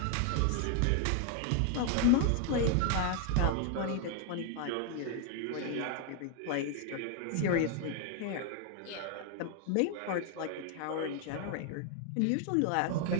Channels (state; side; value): different; both; correlation 0.00